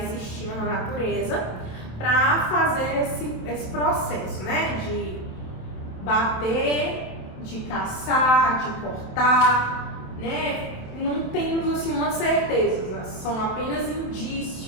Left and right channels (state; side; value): late; right; 27 ms